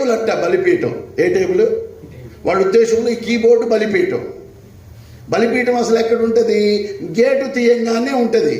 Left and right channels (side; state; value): both; identical; correlation 1.00